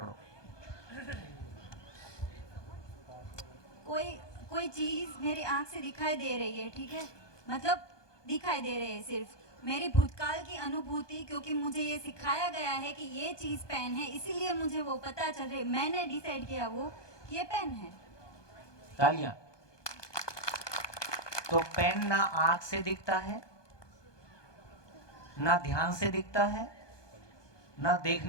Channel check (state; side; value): late; right; 1.2 ms